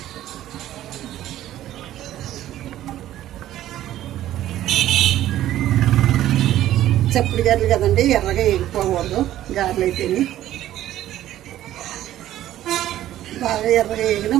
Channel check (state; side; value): quieter; left; 13.2 dB